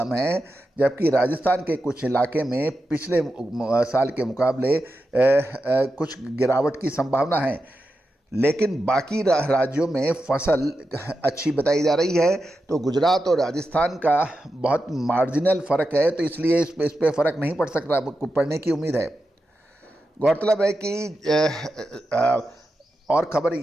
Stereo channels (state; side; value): normal; both; correlation 0.89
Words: है, जबकि राजस्थान के कुछ इलाके में पिछले साल के मुकाबले कुछ गिरावट की संभावना है। लेकिन बाकी राज्यों में फसल अच्छी बताई जा रही है। तो गुजरात और राजस्थान का बहुत मार्जिनल फ़र्क है, तो इसलिए इस पे फ़र्क नहीं पड़ सकता, पड़ने की उम्मीद है। गौरतलब है कि और खबर